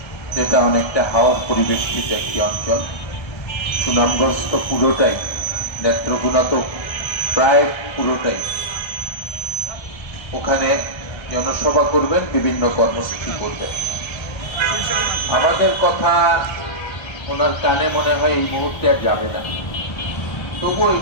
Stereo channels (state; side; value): late; right; 1.3 ms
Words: যেটা অনেকটা হাওর পরিবেষ্টিত একটি অঞ্চল। সুনামগঞ্জ তো পুরোটাই, নেত্রকোনা তো প্রায় পুরোটাই। ওখানে জনসভা করবেন, বিভিন্ন কর্মসূচি করবেন। আমাদের কথা ওনার কানে মনে হয় এই মুহূর্তে আর যাবে না। তবুও